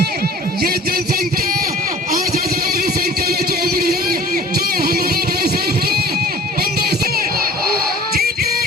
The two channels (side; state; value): both; normal; correlation 0.47